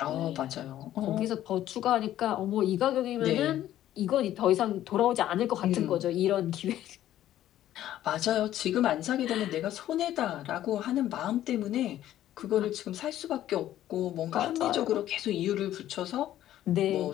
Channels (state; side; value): quieter; right; 12.7 dB